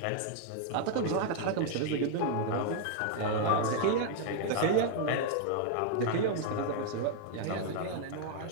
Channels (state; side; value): different; both; correlation 0.00